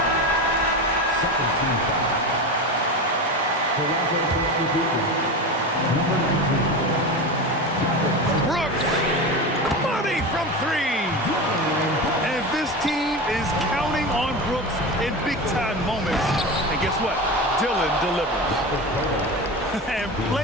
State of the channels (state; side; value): normal; both; correlation 0.24